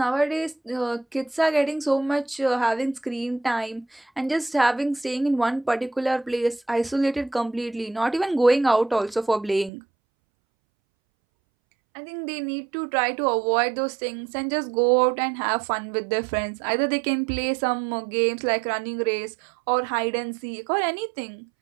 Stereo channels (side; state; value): left; drops out; at 9.7 s